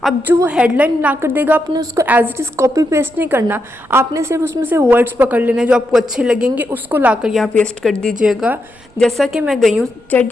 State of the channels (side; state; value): right; noise; rumble, 29 dB below the sound